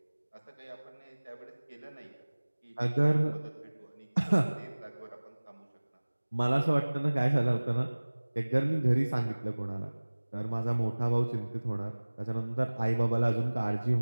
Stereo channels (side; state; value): both; inverted; correlation -1.00